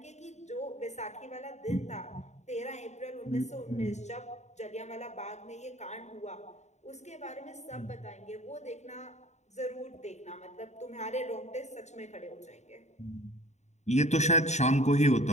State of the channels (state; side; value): late; right; 0.33 ms